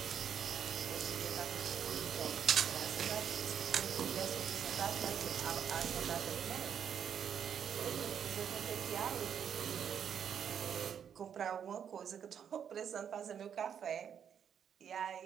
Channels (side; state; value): left; quieter; 8.2 dB